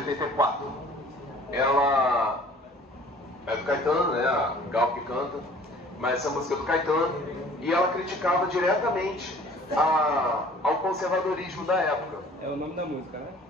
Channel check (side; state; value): both; normal; correlation 0.51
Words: Ela é do Caetano, né? A Gal que canta, mas essa música é do Caetano, e ela criticava diretamente ao conservadorismo da época. É o nome da música, né?